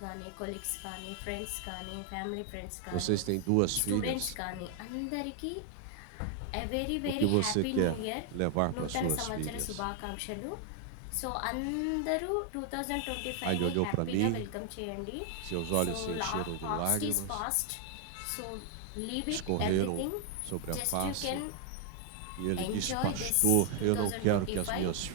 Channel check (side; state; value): both; different; correlation 0.00